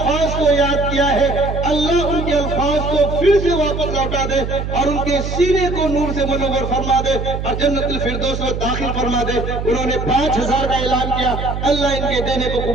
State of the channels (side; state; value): right; noise; hum, 4 dB below the sound